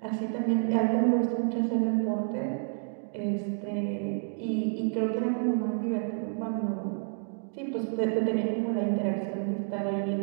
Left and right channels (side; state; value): left; silent; digital silence